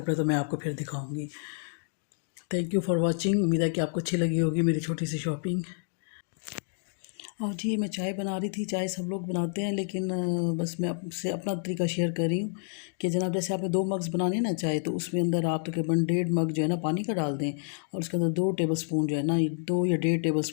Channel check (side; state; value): right; silent; digital silence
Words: तो मैं आपको फिर दिखाऊँगी। थैंक यू फॉर वॉचिंग, उम्मीद है कि आपको अच्छी लगी होगी मेरी छोटी सी शॉपिंग। और जी मैं चाय बना रही थी, चाय सब लोग बनाते हैं, लेकिन बस मैं आपसे अपना तरीका शेयर कर रही हूँ कि जनाब जैसे आपने 2 मग्स बनाने ना चाय, तो उसमें अंदर आप तकरीबन 1.5 मग जो है ना पानी का डाल दें, और उसके अंदर 2 टेबल स्पून जो है ना, 2 या 1.5 टेबल